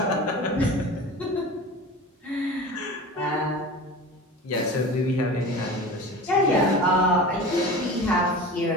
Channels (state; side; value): normal; both; correlation 0.34